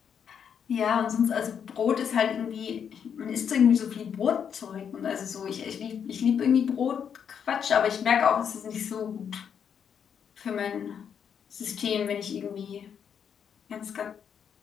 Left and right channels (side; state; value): right; quieter; 7.7 dB